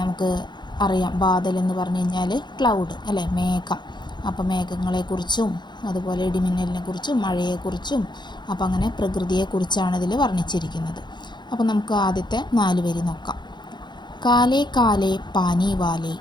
നമുക്ക് അറിയാം, ബാദൽ എന്ന് പറഞ്ഞു കഴിഞ്ഞാൽ ക്ലൗഡ് അല്ലേ, മേഘം. അപ്പോൾ മേഘങ്ങളെക്കുറിച്ചും അതുപോലെ ഇടിമിന്നലിനെക്കുറിച്ചും മഴയെക്കുറിച്ചും അപ്പോൾ അങ്ങനെ പ്രകൃതിയെക്കുറിച്ചാണ് ഇതിൽ വർണ്ണിച്ചിരിക്കുന്നത്. അപ്പോൾ നമുക്ക് ആദ്യത്തെ 4 വരി നോക്കാം. കാലേ കാലേ പാനി വാലേ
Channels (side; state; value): right; late; 0.21 ms